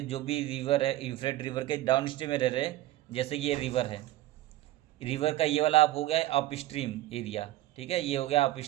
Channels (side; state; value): left; quieter; 15.6 dB